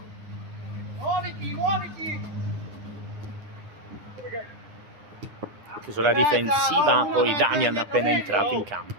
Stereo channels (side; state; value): left; late; 9.9 ms